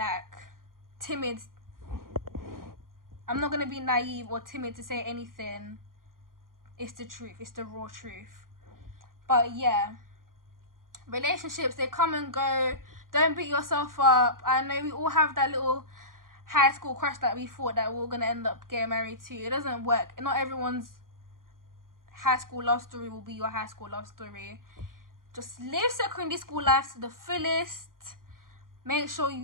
timid. I'm not gonna be naive or timid to say anything. It's the truth, it's the raw truth. But yeah, relationships, they come and go. Don't beat yourself up. I know we all have that little high school crush that we thought that we were gonna end up getting married to. It doesn't work. Not everyone's high school love story will be your high school love story. Just live secondary school life to the fullest. Make sure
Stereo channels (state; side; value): late; left; 0.91 ms